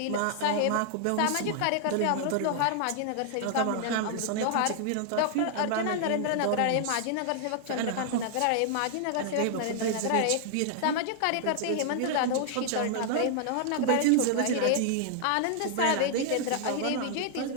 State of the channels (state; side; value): different; both; correlation -0.01